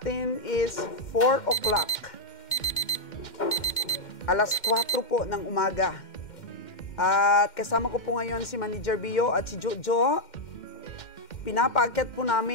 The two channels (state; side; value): late; right; 2.1 ms